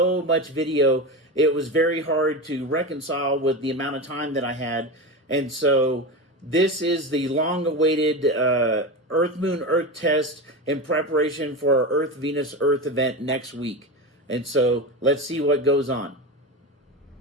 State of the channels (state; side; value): normal; both; correlation 0.22